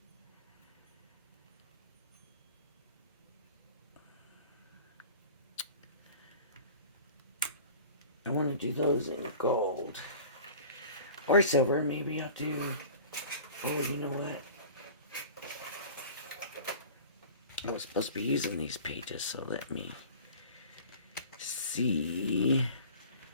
I want to do those in gold or silver. Maybe I'll do, oh, you know what? I was supposed to be using these pages, so let me see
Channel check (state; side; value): inverted; both; correlation -0.42